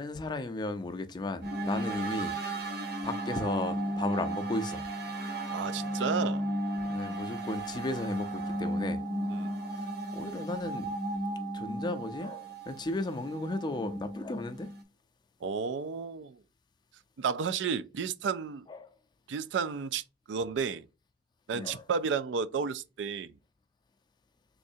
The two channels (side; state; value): both; normal; correlation 0.40